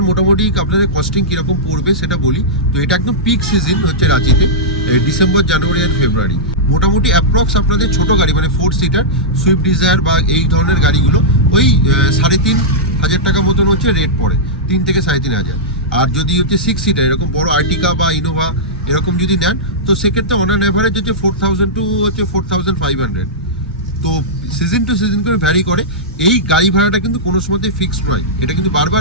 মোটামুটি আপনাদের কস্টিং কীরকম পড়বে সেটা বলি। তো এটা একদম পিক সিজন হচ্ছে রাঁচিতে, ডিসেম্বর, জানুয়ারি আর ফেব্রুয়ারি। মোটামুটি অ্যাপ্রক্স আপনাদের ছোটো গাড়ি মানে 4 সিটার সুইফট ডিজায়ার বা এই ধরনের গাড়িগুলো ওই 3,500 টাকা মতন হচ্ছে রেট পড়ে, 3 থেকে 3,500। আর যদি হচ্ছে 6 সিটার এরকম বড় আর্টিকা বা ইনোভা এরকম যদি নেন, তো সেক্ষেত্রে অন অ্যান অ্যাভারেজ হচ্ছে 4,000 টু হচ্ছে 4,500। তো সিজন টু সিজন করে ভ্যারি করে। এই গাড়ি ভাড়াটা কিন্তু কোনো সময়তে ফিক্সড নয়, এটা কিন্তু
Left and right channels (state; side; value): normal; both; correlation -0.12